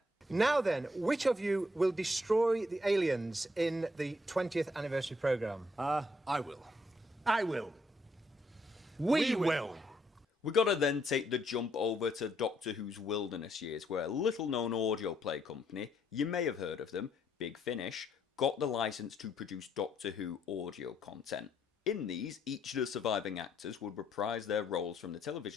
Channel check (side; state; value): both; normal; correlation 0.72